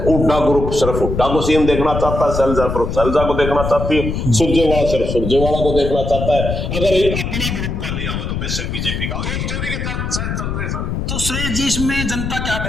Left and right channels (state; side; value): noise; left; rumble, 3 dB below the sound